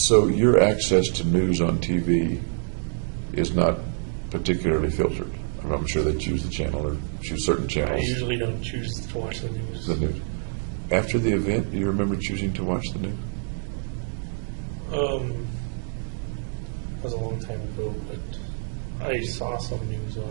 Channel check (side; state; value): left; silent; 61 dB below the other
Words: your access to news on TV is not particularly filtered. I'm sure they choose the channel or choose certain I channels. usually don't choose to watch the news. The news. After the event, do you remember choosing to watch the news? That was a long time ago, but I saw some news